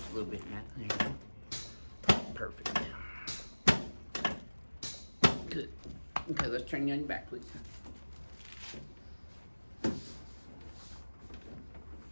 a little bit, Matt. There you go. Perfect. Good. Okay, let's turn you on your back, please.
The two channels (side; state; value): both; inverted; correlation -1.00